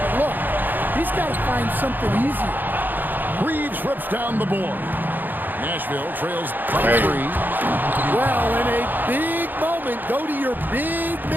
look, he's got to find something easy. Reeves rips down the board. Nashville trails by 3. Well, in a big moment, go to your big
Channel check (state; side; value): late; left; 0.089 ms